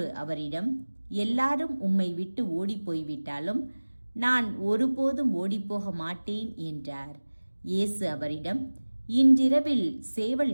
அவரிடம், எல்லாரும் உம்மை விட்டு ஓடிப்போய்விட்டாலும் நான் ஒருபோதும் ஓடிப்போக மாட்டேன் என்றார். இயேசு அவரிடம், இன்றிரவில்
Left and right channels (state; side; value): inverted; both; correlation -1.00